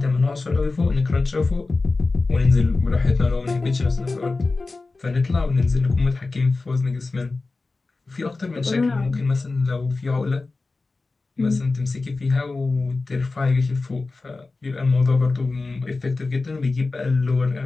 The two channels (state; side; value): quieter; right; 3.6 dB